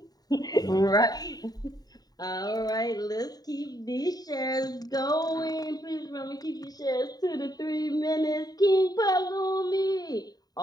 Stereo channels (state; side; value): late; right; 0.19 ms